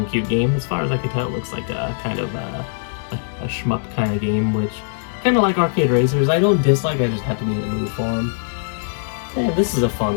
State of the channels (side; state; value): right; silent; digital silence